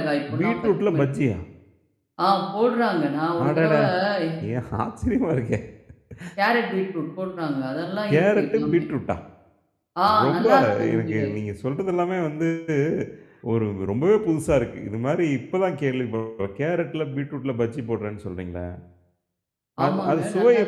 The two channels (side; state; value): both; identical; correlation 1.00